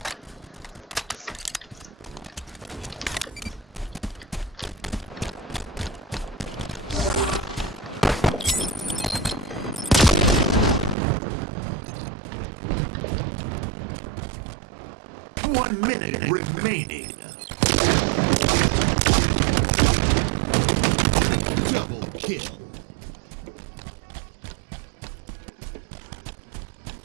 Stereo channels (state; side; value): drops out; left; at 11.0 s